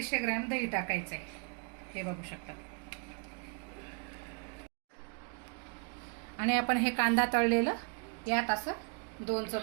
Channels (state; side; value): quieter; left; 36.9 dB